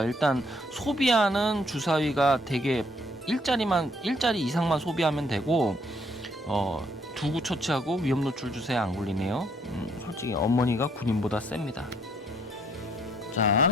일단 소비하는 주사위가 되게 일자리 이상만 소비하면 되고 2구 처치하고 위험 노출 주사위 안 굴리네요. 솔직히 어머니가 군인보다 셉니다.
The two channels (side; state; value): both; normal; correlation 0.67